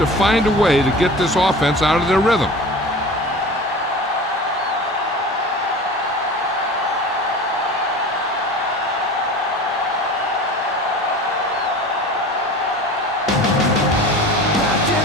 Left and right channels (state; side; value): normal; both; correlation 0.36